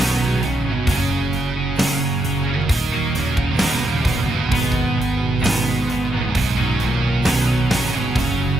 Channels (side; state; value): both; normal; correlation 0.81